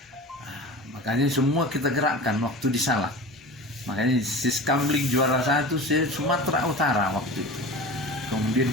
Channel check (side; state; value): both; normal; correlation 0.33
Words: Makanya semua kita gerakkan waktu di Salak. Makanya Siskamling juara 1 Sumatera Utara waktu itu. Kemudian